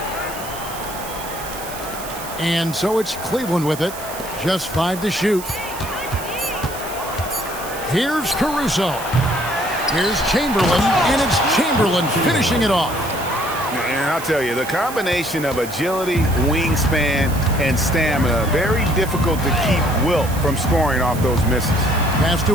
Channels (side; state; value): right; noise; hiss, 13 dB below the sound